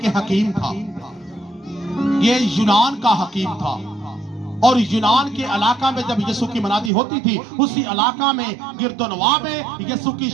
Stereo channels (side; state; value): left; drops out; at 6.9 s